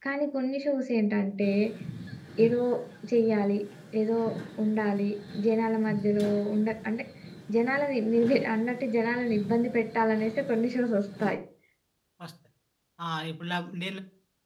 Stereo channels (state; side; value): identical; both; correlation 1.00